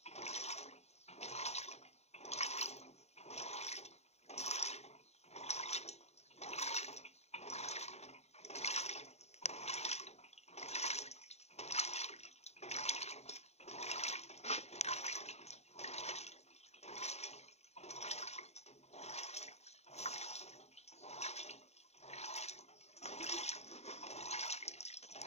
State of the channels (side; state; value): right; late; 0.31 ms